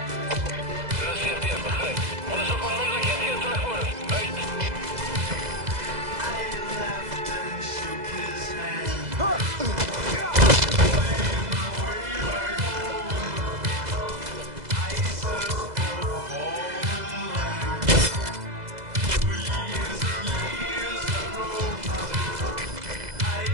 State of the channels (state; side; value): late; left; 2.0 ms